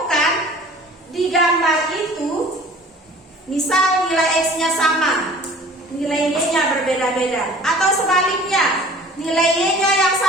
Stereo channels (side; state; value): both; normal; correlation 0.47